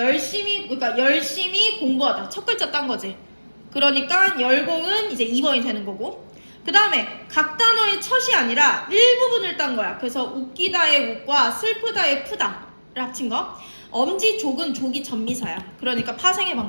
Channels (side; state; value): both; inverted; correlation -1.00